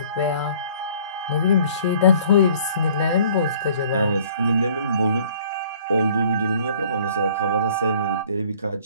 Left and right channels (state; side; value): inverted; both; correlation -0.55